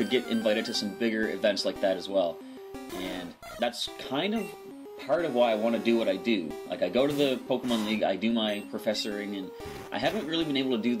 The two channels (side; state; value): both; identical; correlation 1.00